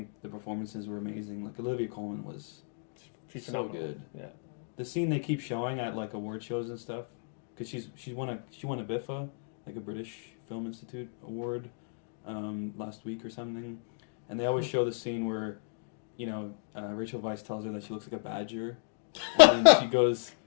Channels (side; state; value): right; silent; digital silence